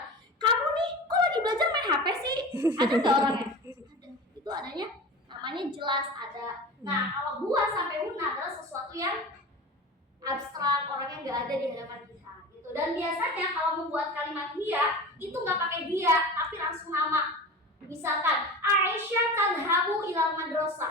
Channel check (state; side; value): normal; both; correlation 0.32